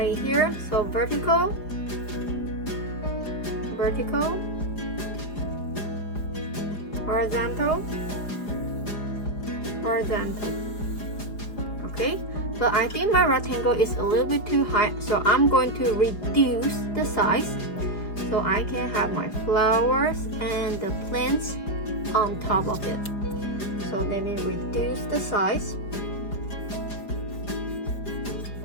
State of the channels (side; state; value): right; late; 4.9 ms